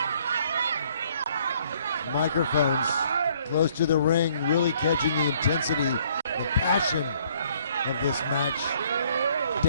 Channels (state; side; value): inverted; both; correlation -0.64